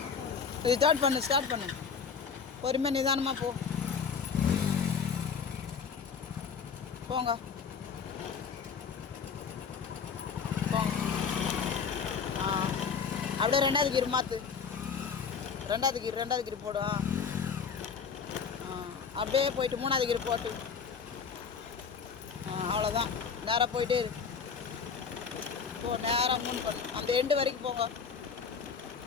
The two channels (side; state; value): right; quieter; 6.1 dB